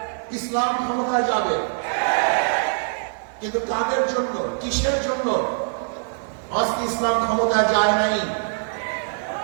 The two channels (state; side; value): silent; left; 63 dB below the other